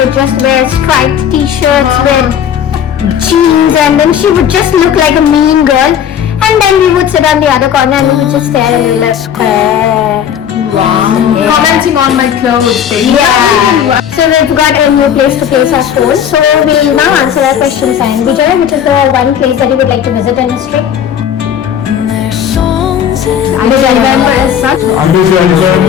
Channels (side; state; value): right; quieter; 9.0 dB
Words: just wear striped t-shirts with jeans, and then she would just look like a mean girl. And then we would sit on the other corner and we would just stare and we were like, Commenting on my clothes. yeah. So we've got a new place to place our phone. So we'll now answer our questions. And Vijay, which is the one place that you would like to visit in history? I don't remember as such.